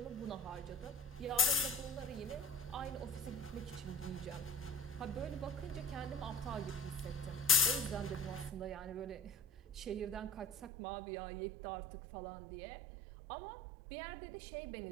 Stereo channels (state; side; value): drops out; left; at 10.7 s